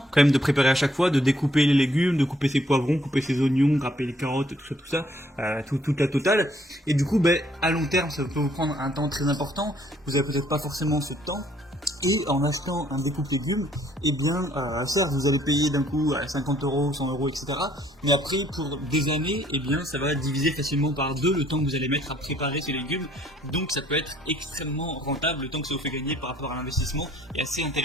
quand même de préparer à chaque fois, de découper les légumes, de couper ses poivrons, couper ses oignons, râper les carottes, tout ça, toute la totale, et du coup à long terme ça peut vous prendre un temps très important, vous avez peut-être pas forcément ce temps, et en achetant un découpe légumes, eh bien, certes, vous allez payer d'un coup 50 euros, 100 euros, etc. Mais après, pour des années, eh bien, ça va diviser facilement par 2 le temps que vous allez mettre à préparer ces légumes. Donc, ça peut être extrêmement rentable. Le temps que ça vous fait gagner par rapport à l'investissement est assez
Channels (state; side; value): normal; both; correlation 0.64